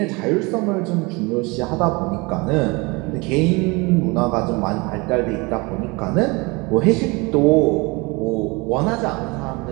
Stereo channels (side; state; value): left; quieter; 26.3 dB